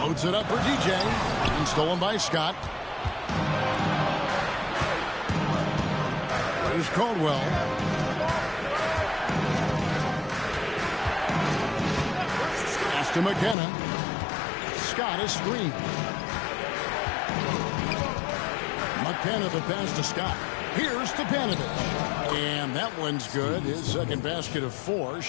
Loads it up for DJ. And stolen by Scott. Here's Caldwell. Pass to McKenna. Scott is screened. McKenna the pass to Scott. Here's Stepanovic. And that one's good. His second basket of 4,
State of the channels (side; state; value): right; drops out; at 13.6 s